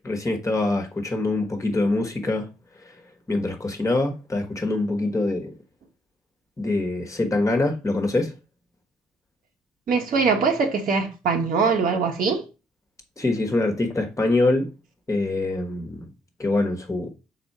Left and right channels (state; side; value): normal; both; correlation 0.71